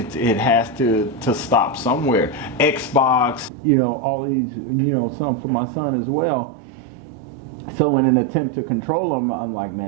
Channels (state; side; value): drops out; left; at 3.5 s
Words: has to stop somewhere. Xbox, you know, all these, you know, some for my son as well. So in an attempt to control them, I'm like,